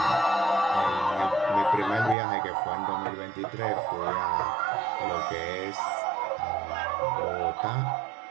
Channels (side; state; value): left; drops out; at 2.1 s